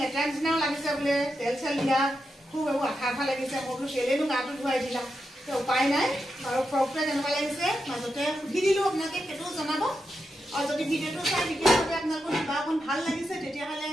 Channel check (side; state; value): both; normal; correlation 0.87